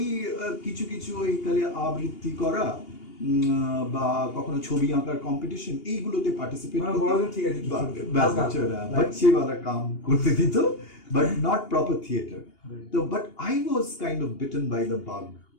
কিছু ওই তাহলে আবৃত্তি করা বা কখনো ছবি আঁকার কম্পিটিশন, এইগুলোতে পার্টিসিপেট বাচ্চাওয়ালা কাম করতে দিত, বাট নট প্রপার থিয়েটার। তো but I was kind of bitten by the bug.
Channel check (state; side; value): late; right; 2.8 ms